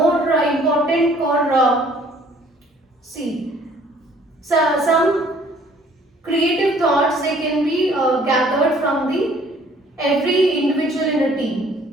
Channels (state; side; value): normal; both; correlation 0.58